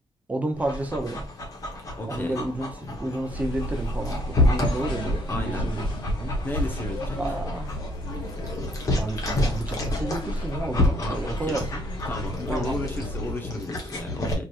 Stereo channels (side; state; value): both; normal; correlation 0.64